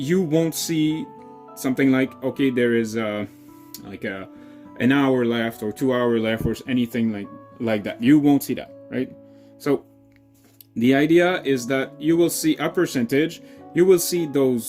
won't see something like, okay, there is like an hour left or 2 hours left or anything like that. You won't see that, right? So the idea is that you will see a percentage, you will see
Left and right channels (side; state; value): both; identical; correlation 1.00